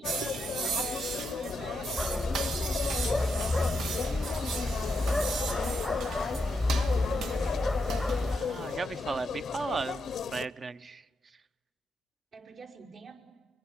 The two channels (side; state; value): both; normal; correlation 0.83